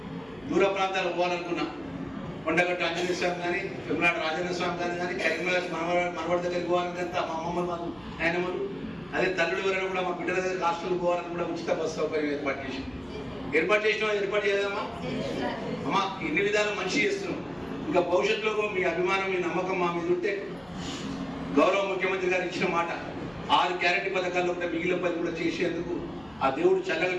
దూర ప్రాంతాలు పోవాలనుకున్నా, కొండగట్టు ఆంజనేయ స్వామి కానీ, తిరుమలాడ రాజేంద్ర స్వామి కానీ, కరీంనగర్ మనవాడి దగ్గరికి పోవాలంటే మా అమ్మమ్మలు, మా నాయనమ్మలు, అదే తల్లుడు ఎవరైనా కూడా మా బిడ్డల దగ్గర హాస్టల్కి పోవాలని కూడా ఉచిత బస్సు సౌకర్యం ఏర్పాటు చేసినాం. ఏర్పాటు చేయదమ్మా అమ్మా. ఇన్ని విధాలు మంచి చేస్తున్నాం. ఇంకా భవిష్యత్తులో మీ అభిమానం, మీ నమ్మకం మా మీద ఉంటే గౌరవ ముఖ్యమంత్రి గారు ఇచ్చిన మాట 6 గ్యారెంటీ పథకాల్లో కూడా మిగిలిన పని కూడా చేసేందుకు ఆ దేవుడు చల్లగా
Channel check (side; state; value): left; noise; hum, 26 dB below the sound